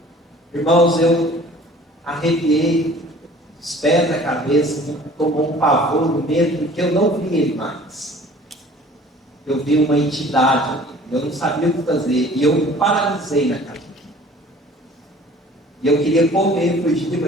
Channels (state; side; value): normal; both; correlation 0.49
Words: irmãos, eu arrepiei os pés da cabeça, tomou um pavor, um medo, porque eu não vi ele mais. Eu vi uma entidade, eu não sabia o que fazer, e eu me paralisei na cabeça. E eu queria correr, fugir,